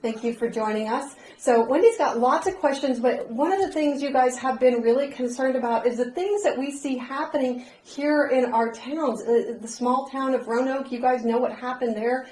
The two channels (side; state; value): both; identical; correlation 1.00